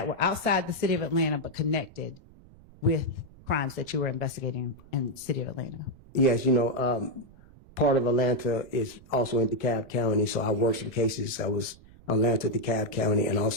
were outside the city of Atlanta but connected with crimes that you were investigating in the city of Atlanta? Yes, you know, part of Atlanta is also in DeKalb County, so I worked some cases. I was Atlanta, DeKalb County, and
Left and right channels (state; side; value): noise; right; rumble, 23 dB below the sound